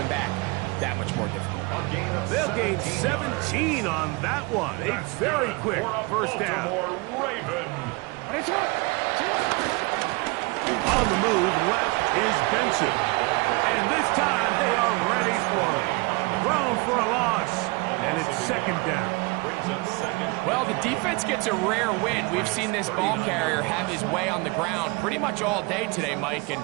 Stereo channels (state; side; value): quieter; left; 26.6 dB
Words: back that much more difficult. They'll gain 17 on that one. A very quick first down. On the move, left is Benson. And this time they are ready for it. Thrown for a loss. And it's second down. Well, the defense gets a rare win. We've seen this ball carrier have his way on the ground pretty much all day today, Mike, and